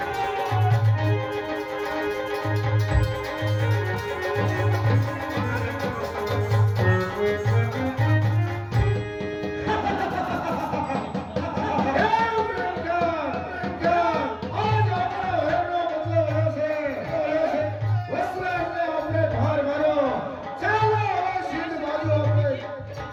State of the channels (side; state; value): both; identical; correlation 1.00